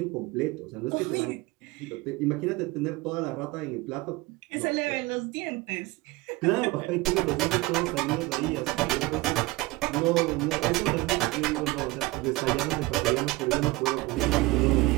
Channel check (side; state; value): left; quieter; 21.3 dB